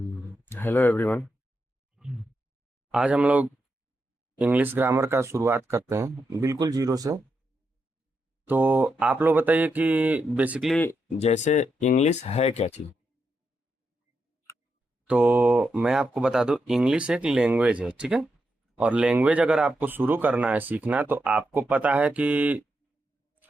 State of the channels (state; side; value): normal; both; correlation 0.84